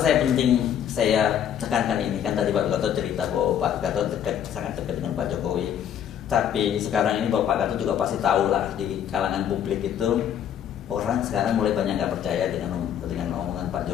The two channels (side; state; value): right; quieter; 9.5 dB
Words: tekankan ini? Kan tadi Pak Gatot cerita bahwa Pak Gatot sangat dekat dengan Pak Jokowi. Tapi sekarang ini Pak Gatot juga pasti tahu lah di kalangan publik itu orang sekarang mulai banyak nggak percaya dengan omongan Pak